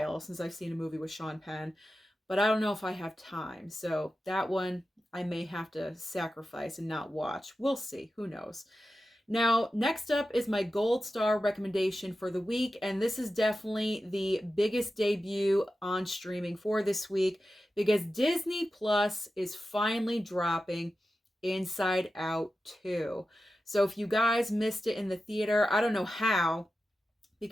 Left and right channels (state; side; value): normal; both; correlation 0.92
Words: since I've seen a movie with Sean Penn, but I don't know if I have time. So that one I may have to sacrifice and not watch. We'll see. Who knows? Now, next up is my gold star recommendation for the week, and this is definitely the biggest debut on streaming for this week because Disney Plus is finally dropping Inside Out 2. So if you guys missed it in the theater, I don't know how,